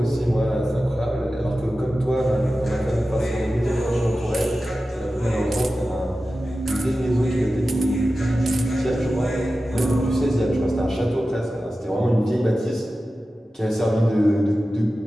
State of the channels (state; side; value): normal; both; correlation 0.94